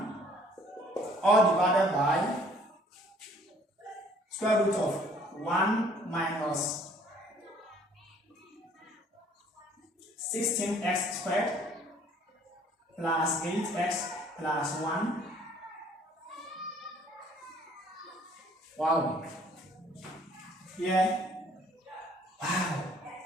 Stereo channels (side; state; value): both; normal; correlation 0.58